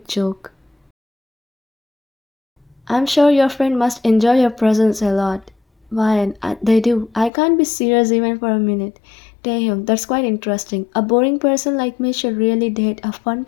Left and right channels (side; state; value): right; drops out; at 7.3 s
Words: joke. I'm sure your friend must enjoy your presence a lot. Why, they do. I can't be serious even for a minute. Taehyung, that's quite interesting. A boring person like me should really date a fun